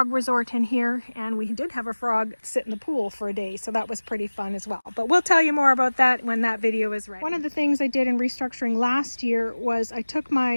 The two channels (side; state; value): both; inverted; correlation -1.00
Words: resort in here, and we did have a frog sit in the pool for a day, so that was pretty fun as well. But we'll tell you more about that when that video is ready. One of the things I did in restructuring last year was I took